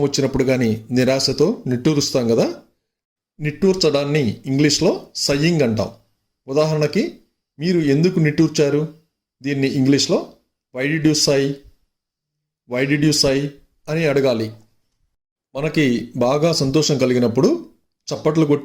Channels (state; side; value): identical; both; correlation 1.00